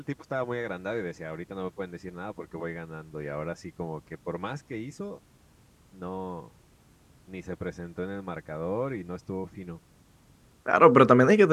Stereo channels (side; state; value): both; identical; correlation 1.00